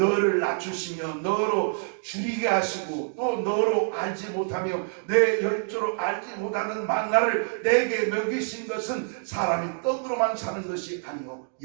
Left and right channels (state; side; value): silent; left; digital silence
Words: 낮추시며 너로 줄이게 하시고 또 너로 알지 못하며 내 열조로 알지 못하는 만나를 내게 먹이신 것은 사람이 떡으로만 사는 것이 아니요